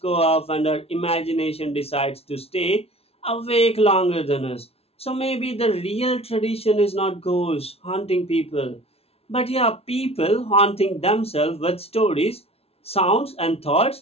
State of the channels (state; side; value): late; right; 0.29 ms